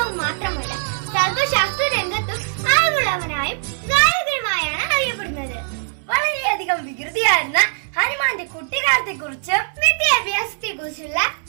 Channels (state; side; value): silent; left; 65 dB below the other